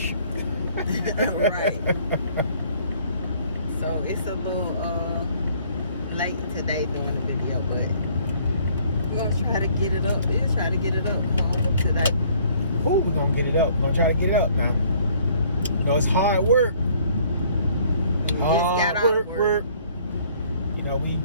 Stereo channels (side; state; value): both; inverted; correlation -0.60